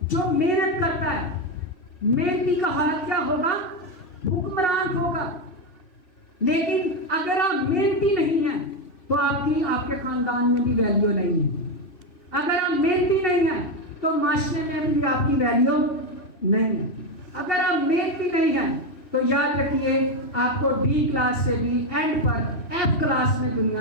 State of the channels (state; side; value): late; right; 3.1 ms